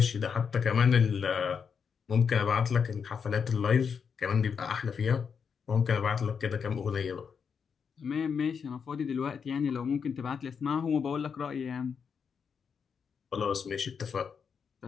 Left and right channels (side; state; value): right; quieter; 6.4 dB